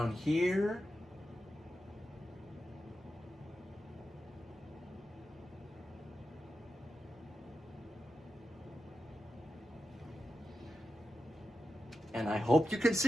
here. And I hope you can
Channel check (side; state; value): both; normal; correlation 0.89